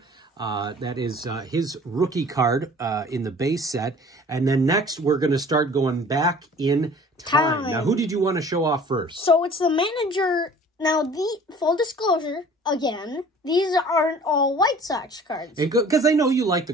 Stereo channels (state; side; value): normal; both; correlation 0.48